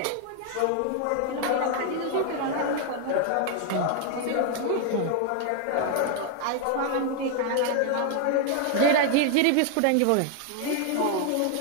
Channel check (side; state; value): both; different; correlation 0.00